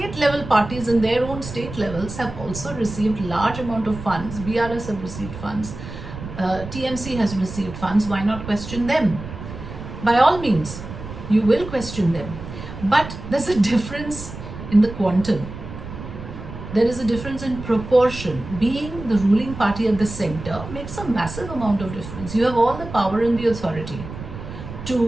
level parties in their own state levels have also received large amount of funds. BRS have received funds. TMC has received funds. Why not question them? By all means, you will question them. But there's a difference in the quantum. There is a difference in proportion. Being the ruling party at the center makes a massive amount of difference. You have all the power and the authority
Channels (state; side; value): noise; right; rumble, 11 dB below the sound